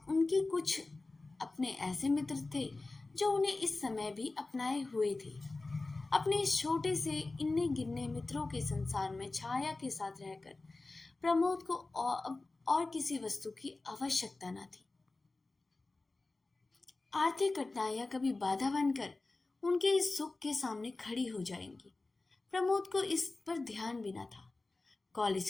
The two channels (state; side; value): quieter; right; 3.3 dB